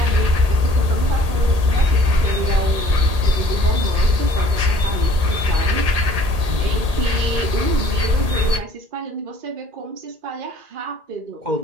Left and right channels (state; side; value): late; left; 1.8 ms